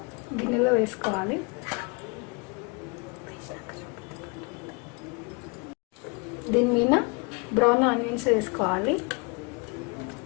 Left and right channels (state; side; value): quieter; right; 30.9 dB